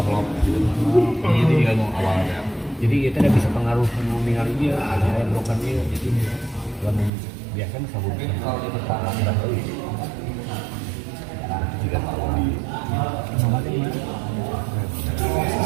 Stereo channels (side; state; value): left; drops out; at 7.1 s